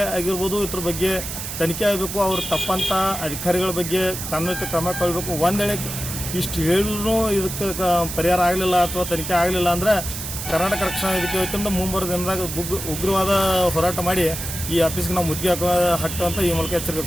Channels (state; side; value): noise; right; hiss, 7 dB below the sound